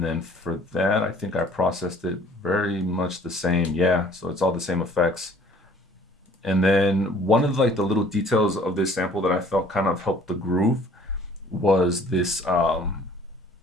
then for that, I think I processed it very much the same. Yeah, so it's all the same effects. And then one of like the little details of this sample that I felt kind of helped the groove was this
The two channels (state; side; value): normal; both; correlation 0.54